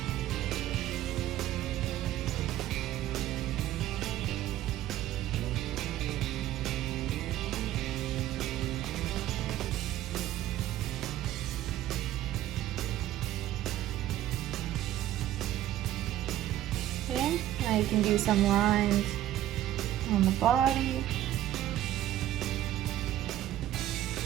Okay, now you can do some lines on the body.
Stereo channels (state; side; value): quieter; left; 13.3 dB